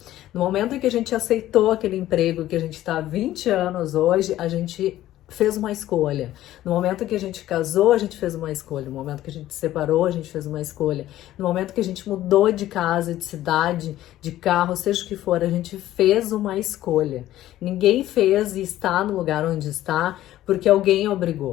No momento em que a gente aceitou aquele emprego que a gente está há 20 anos hoje, a gente fez uma escolha. No momento que a gente casou, a gente fez uma escolha. No momento que a gente se separou, a gente fez uma escolha. No momento que a gente mudou de casa, de cidade, de carro, seja o que for, a gente fez uma escolha. Ninguém fez e está no lugar onde está porque alguém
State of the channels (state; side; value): quieter; right; 14.0 dB